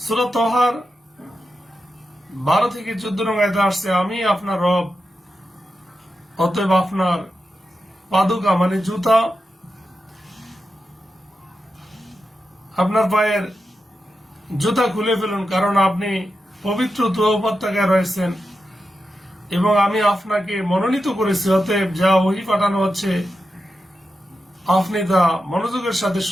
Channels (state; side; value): normal; both; correlation 0.89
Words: সূরা তাহার 12 থেকে 14 নং আয়াতে আসছে, আমি আপনার রব, অতএব আপনার পাদুকা মানে জুতা, আপনার পায়ের জুতা খুলে ফেলুন, কারণ আপনি পবিত্র তুর উপত্যকায় রয়েছেন এবং আমি আপনাকে মনোনীত করেছি। অতএব যা ওহী পাঠানো হচ্ছে আপনি তা মনোযোগের সাথে